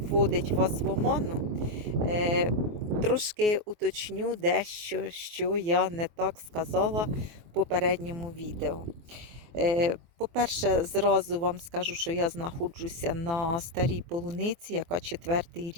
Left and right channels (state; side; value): late; left; 24 ms